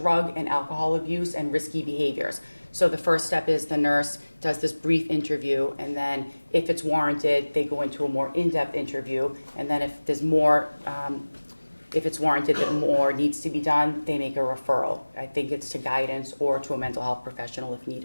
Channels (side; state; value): both; inverted; correlation -1.00